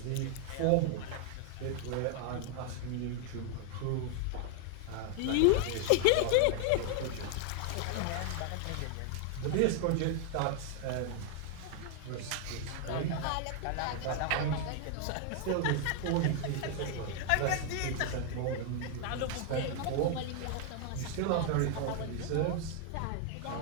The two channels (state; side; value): different; both; correlation 0.00